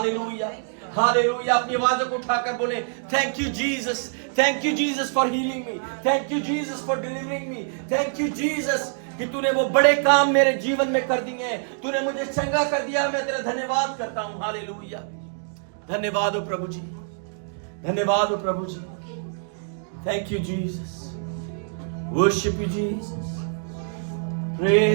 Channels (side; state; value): left; silent; digital silence